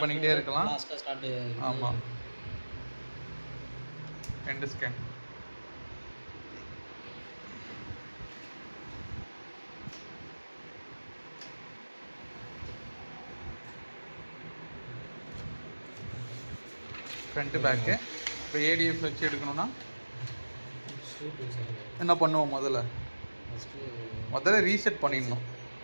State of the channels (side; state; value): both; inverted; correlation -1.00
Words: பண்ணிக்கிட்டே இருக்கலாம். ஆமாம், 2 ஸ்கேன். Front back. இப்போ ஏடிஎஃப் வச்சு எடுக்கணும்னா என்ன பண்ணுவோம்? முதல்ல ரீசெட் பண்ணிடணும்.